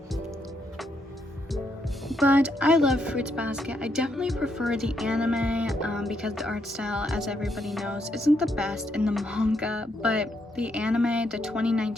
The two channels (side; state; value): both; normal; correlation 0.77